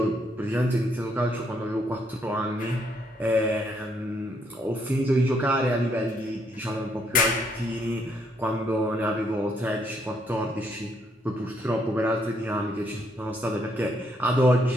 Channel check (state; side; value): normal; both; correlation 0.72